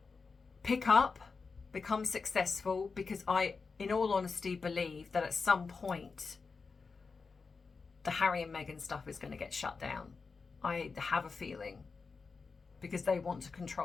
pick up, become successful, because I, in all honesty, believe that at some point the Harry and Meghan stuff is going to get shut down. I have a feeling, because they want to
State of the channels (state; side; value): quieter; right; 4.7 dB